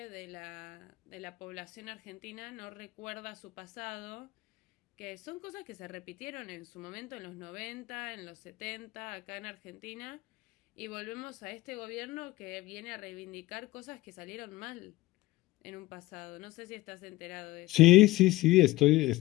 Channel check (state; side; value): quieter; right; 18.4 dB